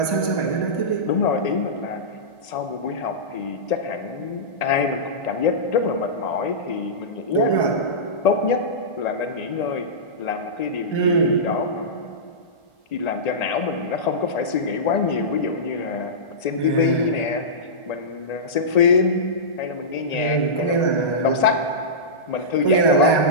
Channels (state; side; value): late; right; 1.9 ms